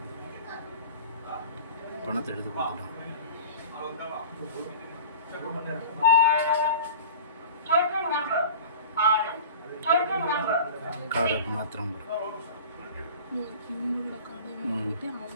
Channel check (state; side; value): inverted; both; correlation -0.38